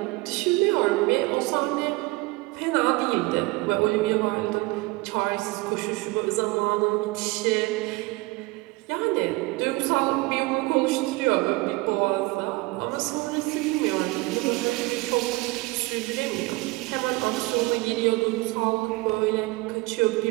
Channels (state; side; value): quieter; left; 22.7 dB